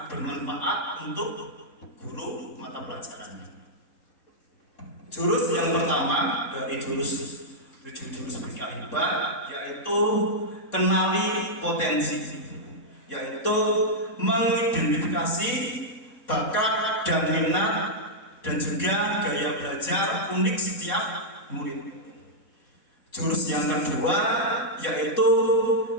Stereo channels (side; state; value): right; late; 3.6 ms